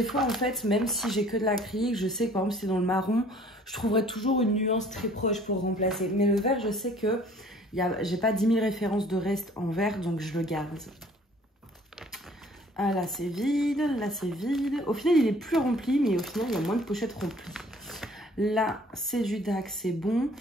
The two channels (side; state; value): both; normal; correlation 0.54